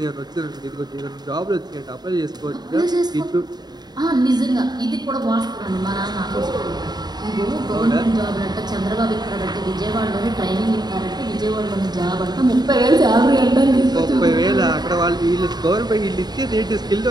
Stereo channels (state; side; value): late; left; 0.20 ms